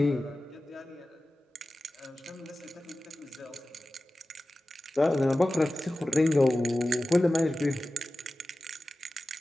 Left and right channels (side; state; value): both; normal; correlation 0.95